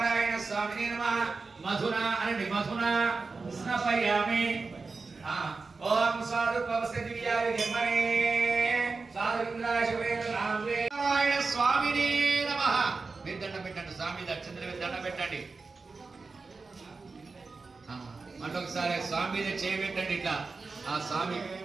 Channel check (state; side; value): quieter; left; 4.1 dB